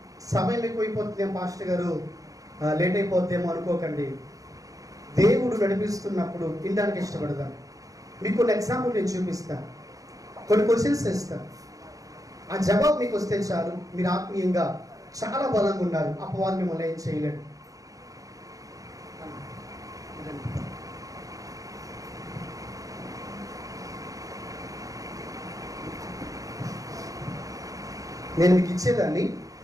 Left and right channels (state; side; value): late; left; 0.17 ms